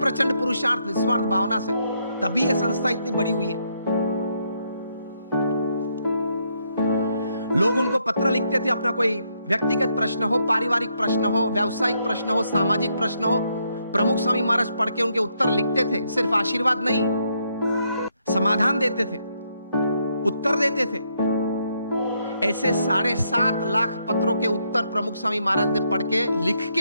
पुरुषार्थ, निस्वार्थ भावना से, तभी यह संस्था इतनी बड़ी हुई है। लोग उनको पत्र लिखते थे, अपना कोई व्यक्तिगत प्रश्न हो, पारिवारिक प्रश्न हो, व्यावसायिक प्रश्न हो, सामाजिक प्रश्न हो, प्रमुख स्वामी महाराज पढ़ के उनके उत्तर लिखते थे। सिर्फ आशीर्वाद नहीं, समाधान देते थे, उत्तर देते थे। ऐसे 7.5 लाख पत्रों के उत्तर प्रमुख स्वामी महाराज ने पढ़ के लिख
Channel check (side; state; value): both; inverted; correlation -0.76